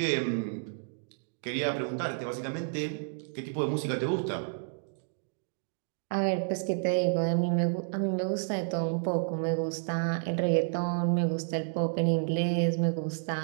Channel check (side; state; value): left; silent; digital silence